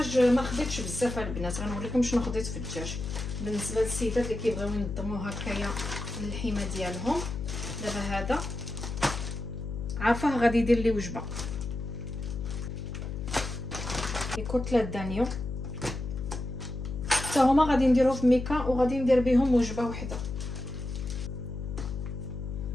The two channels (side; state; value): left; noise; hum, 6 dB below the sound